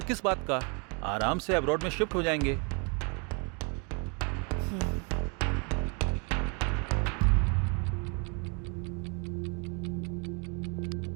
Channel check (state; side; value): quieter; left; 34.6 dB